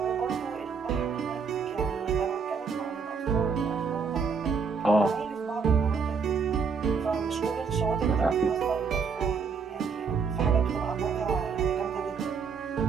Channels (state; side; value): quieter; left; 5.6 dB